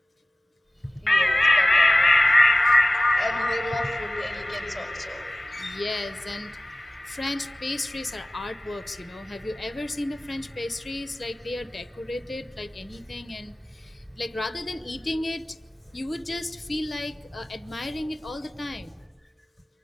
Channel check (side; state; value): both; normal; correlation 0.97